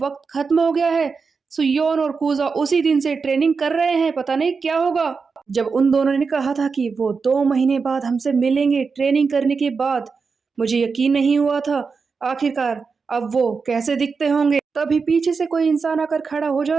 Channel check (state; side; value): quieter; left; 5.0 dB